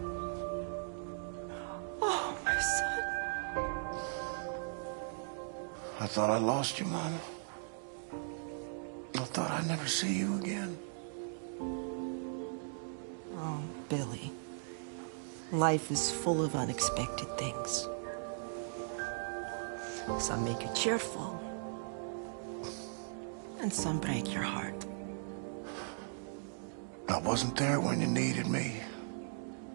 Oh, my son. I thought I lost you, Mama. I thought I'd never see you again. Oh, Billy. Life is full of unexpected things. Some make you cheerful, and some break your heart. I wasn't there when you needed me.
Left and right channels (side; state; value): left; silent; digital silence